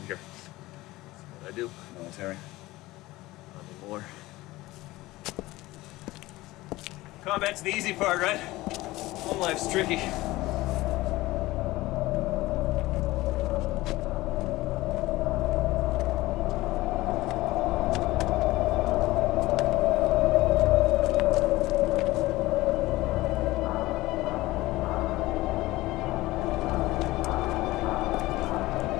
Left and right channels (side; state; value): right; quieter; 18.7 dB